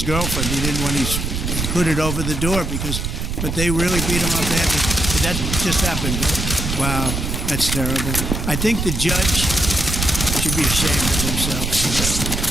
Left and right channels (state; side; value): noise; right; rumble, 2 dB below the sound